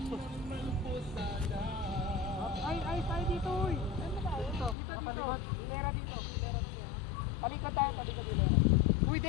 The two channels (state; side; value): drops out; right; at 4.8 s